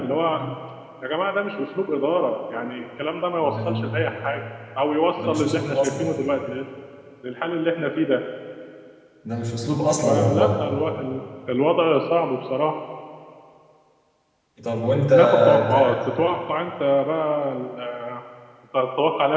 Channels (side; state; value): both; identical; correlation 1.00